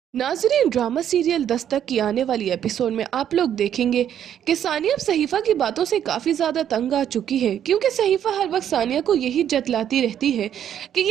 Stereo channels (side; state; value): left; quieter; 9.8 dB